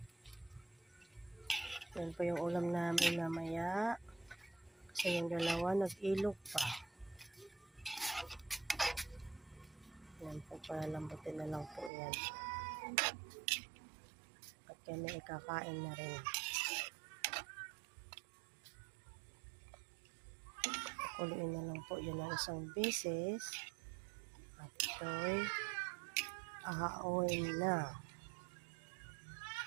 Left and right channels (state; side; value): drops out; left; at 11.9 s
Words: Yan po yung ulam namin mamaya. Kasi yung dalawa nag-ilog pa. Yan po, palalambutin na lang po yan. At kami ikakain na rin. Kuliin na lang po yun ng isang beses. At ito'y ahawin na.